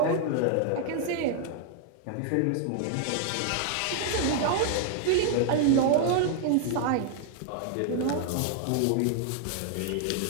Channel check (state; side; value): different; both; correlation 0.00